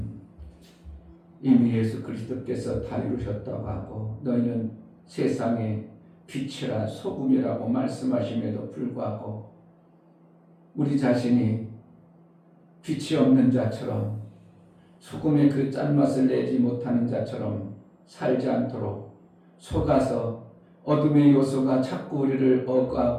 이미 예수 그리스도께서 다 이루셨다고 하고 너희는 세상의 빛이라 소금이라고 말씀하심에도 불구하고 우리 자신이 빛이 없는 자처럼 소금의 그 짠맛을 내지 못하는 자처럼 살지 않도록 속아서 어둠의 요소가 자꾸 우리를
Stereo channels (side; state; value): both; identical; correlation 1.00